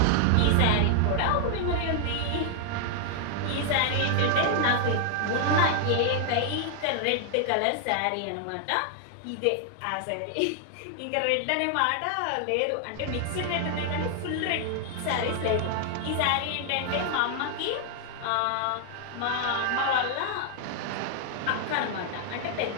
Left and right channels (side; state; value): both; different; correlation 0.00